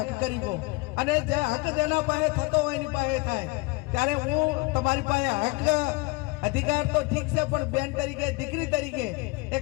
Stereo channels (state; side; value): quieter; right; 24.9 dB